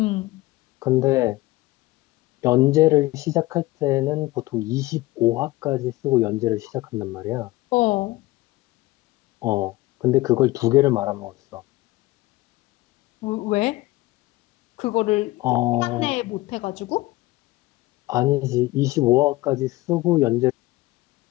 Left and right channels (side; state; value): right; quieter; 19.4 dB